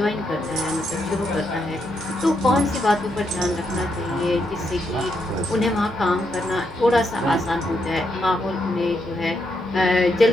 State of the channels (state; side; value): normal; both; correlation 0.80